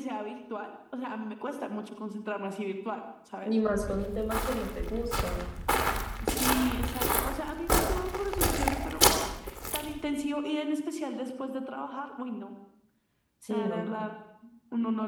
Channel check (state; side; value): identical; both; correlation 1.00